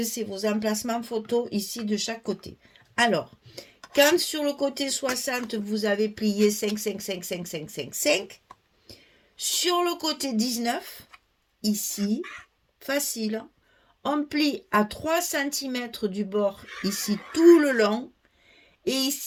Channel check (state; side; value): identical; both; correlation 1.00